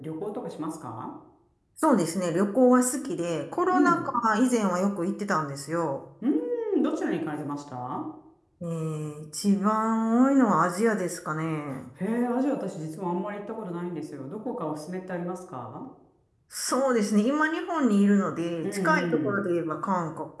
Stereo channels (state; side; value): identical; both; correlation 1.00